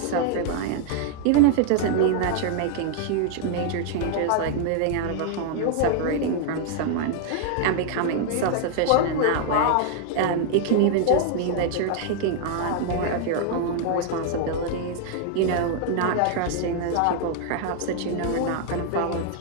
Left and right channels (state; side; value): different; both; correlation 0.00